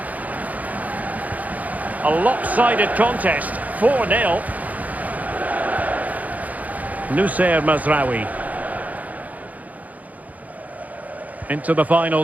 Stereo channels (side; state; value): left; late; 0.076 ms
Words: A lopsided contest, 4-0. Noussair Mazraoui. Into the